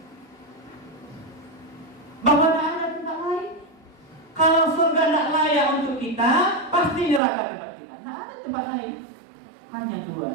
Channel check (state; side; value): drops out; left; at 7.2 s